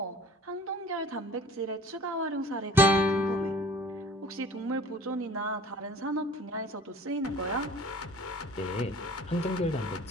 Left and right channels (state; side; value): normal; both; correlation 0.46